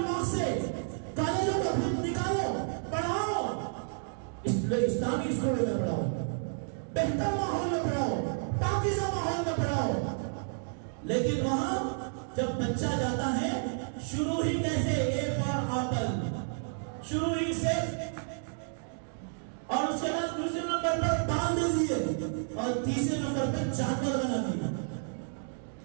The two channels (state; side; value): silent; left; digital silence